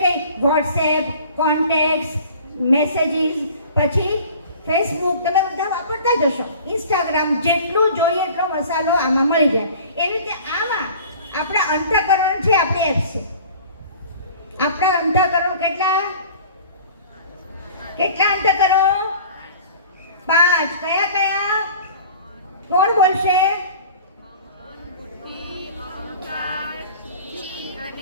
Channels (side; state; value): both; inverted; correlation -0.44